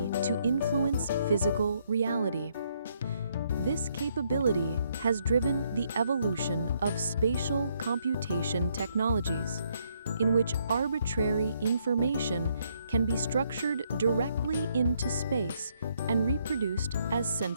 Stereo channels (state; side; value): inverted; both; correlation -0.72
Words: to influence physical reality. This capability has driven the evolution of spatial computation technologies, in which arbitrary information can be structured directly into space and reproduced as